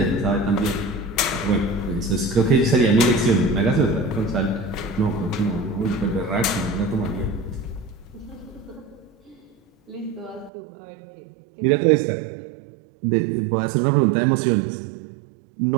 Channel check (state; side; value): drops out; left; at 10.5 s